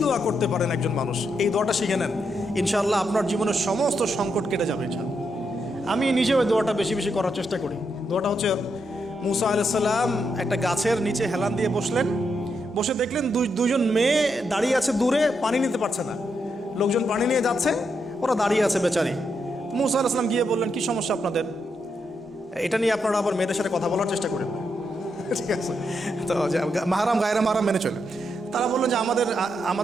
দোয়া করতে পারেন একজন মানুষ, এই দোয়াটা শিখে নেন, ইনশাআল্লাহ আপনার জীবনের সমস্ত সংকট কেটে যাবে ইনশাআল্লাহ। আমি নিজেও ওই দোয়াটা বেশি বেশি করার চেষ্টা করি। দোয়াটা হচ্ছে, মুসা আলাইহিস সালাম একটা গাছের নিচে হেলান দিয়ে বসলেন, বসে দেখলেন দুজন মেয়ে দাঁড়িয়ে আছে দূরে, পানি নিতে পারছে না, লোকজন পানি নিয়ে যাচ্ছে, ওরা দাঁড়িয়ে আছে বেচারি। মুসা আলাইহিস সালাম গিয়ে বললেন, কি সমস্যা আপনাদের? এটা নিয়ে আপনারা আবার মেয়েদের সাথে কথা বলার চেষ্টা করেন না, ঠিক আছে? তো মাহারাম গায়রা মাহারাম মেনে চলে। তারা বললেন যে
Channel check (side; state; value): both; normal; correlation 0.81